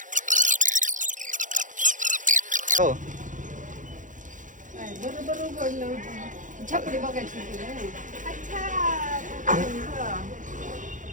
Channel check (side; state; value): left; late; 0.37 ms